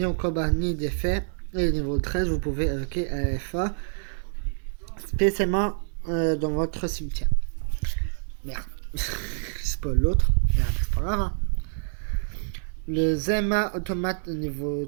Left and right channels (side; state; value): left; silent; 60 dB below the other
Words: au combat ni d'effet. Et au niveau 13, vous pouvez évoquer FA spécialement dans votre cimetière. Merde, c'est pas l'autre. Merde, c'est pas grave. Hein. Le Zema automate